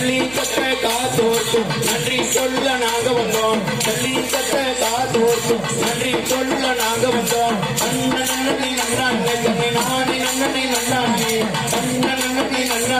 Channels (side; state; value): right; noise; hum, 19 dB below the sound